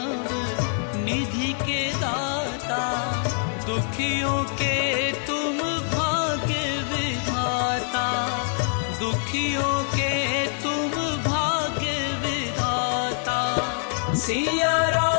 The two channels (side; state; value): right; silent; 62 dB below the other